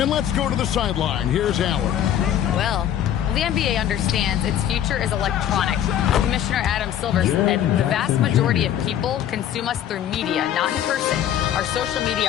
let's go to the sideline. Here's Allen. Well, the NBA understands its future is electronic. Commissioner Adam Silver said the vast majority of people consume us through media, not in person. Our social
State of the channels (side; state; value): right; quieter; 10.5 dB